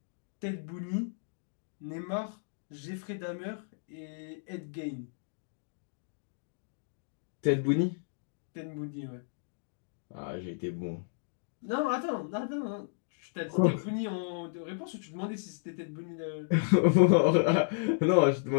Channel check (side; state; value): right; silent; digital silence